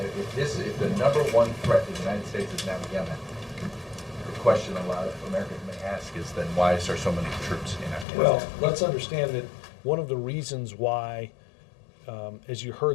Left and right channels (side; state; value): right; drops out; at 8.1 s